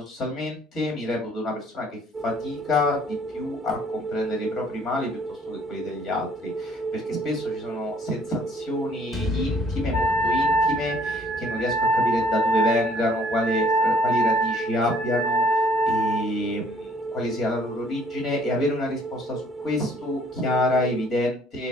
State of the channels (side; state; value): both; normal; correlation 0.60